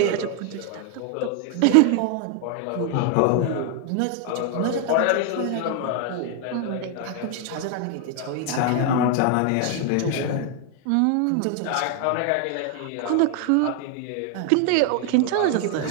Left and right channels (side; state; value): both; different; correlation 0.00